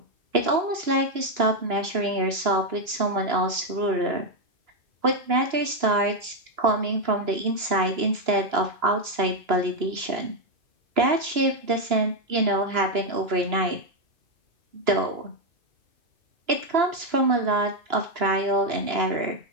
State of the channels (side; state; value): left; late; 2.9 ms